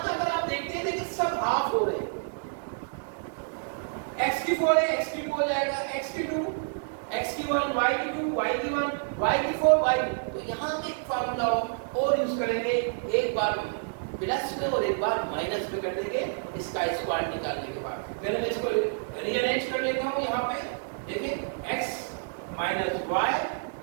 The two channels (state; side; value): silent; left; digital silence